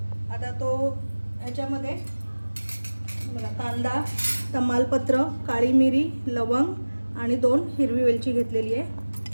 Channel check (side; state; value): both; inverted; correlation -1.00